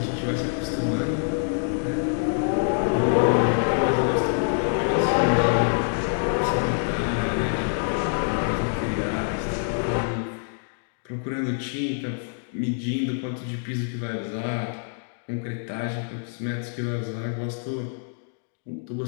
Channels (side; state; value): right; silent; digital silence